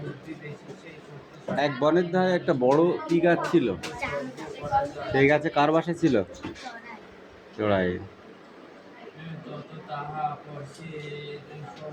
এক বনের ধারে একটা বড় কি গাছ ছিল? সেই গাছে কার বাসা ছিল? চড়াই।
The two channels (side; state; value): both; identical; correlation 1.00